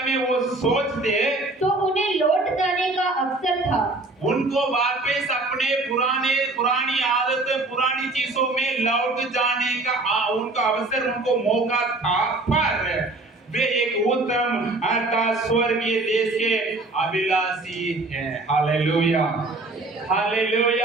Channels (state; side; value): quieter; left; 3.0 dB